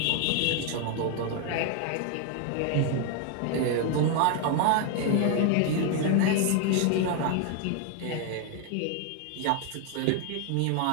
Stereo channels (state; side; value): different; both; correlation 0.01